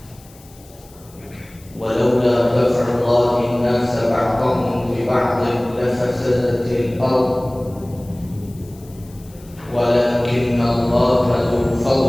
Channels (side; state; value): left; noise; hiss, 25 dB below the sound